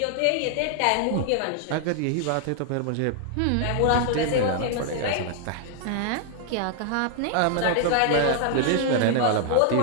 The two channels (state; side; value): different; both; correlation 0.00